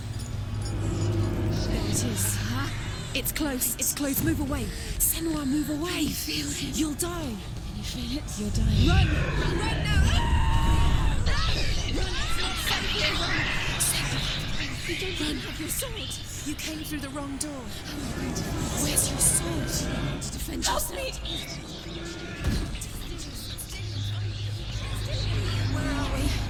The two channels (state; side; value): identical; both; correlation 1.00